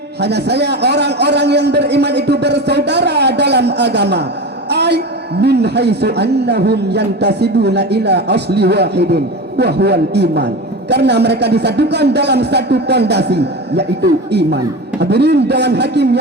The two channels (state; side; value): normal; both; correlation 0.27